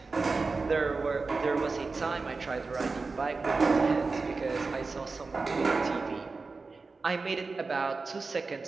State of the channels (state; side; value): quieter; left; 4.1 dB